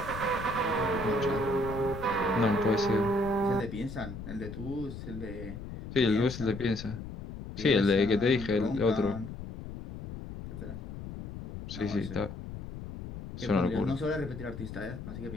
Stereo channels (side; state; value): left; noise; rumble, 10 dB below the sound